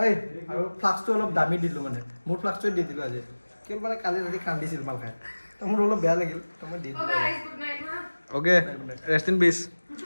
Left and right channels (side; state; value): both; inverted; correlation -1.00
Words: এই আৰু ফ্লাক্সটো অলপ দামী দিলোঁ মানে মোৰ ফ্লাক্সটোৱে দি দিলোঁ আজি কেৱল মানে কালি ৰাতি কান্দিছিল মাল খাই তো মোৰ অলপ বেয়া লাগিল তো মই দি দিলোঁ অ'কে ৰেষ্ট ইন পিচ